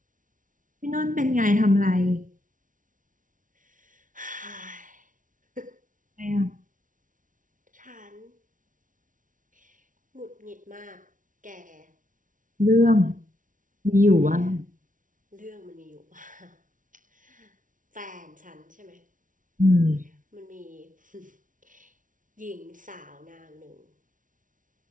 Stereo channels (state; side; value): late; left; 0.38 ms